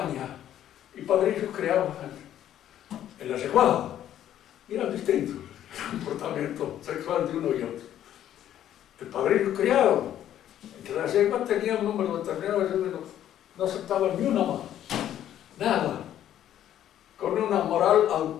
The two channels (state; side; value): quieter; right; 11.3 dB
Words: y padrillos criados en la yeguada, y eran distintos el comportamiento sexual de uno y otro. El padrillo criado entre la yegua tenía un número determinado, no aceptaba ni una más, nada, con una moral